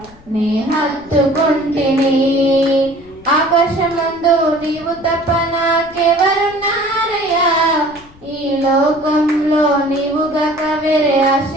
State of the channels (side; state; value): left; noise; rumble, 24 dB below the sound